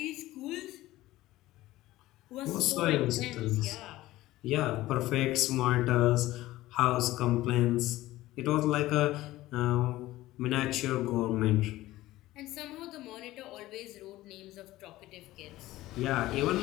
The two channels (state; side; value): quieter; right; 16.7 dB